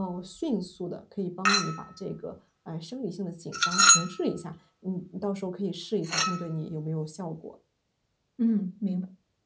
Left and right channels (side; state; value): both; identical; correlation 1.00